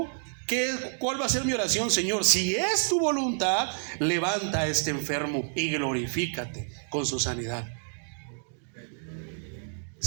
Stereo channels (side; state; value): left; silent; digital silence